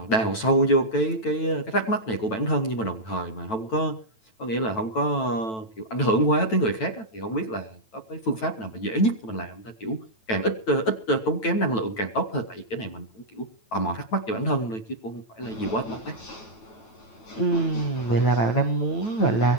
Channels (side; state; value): right; late; 9.1 ms